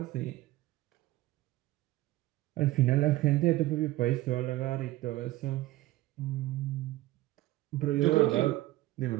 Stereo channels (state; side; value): quieter; left; 17.1 dB